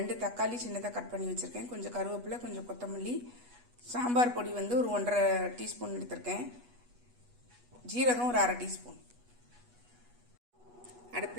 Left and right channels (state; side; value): late; left; 8.2 ms